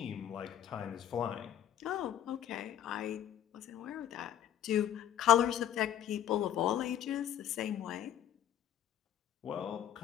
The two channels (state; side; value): quieter; right; 11.0 dB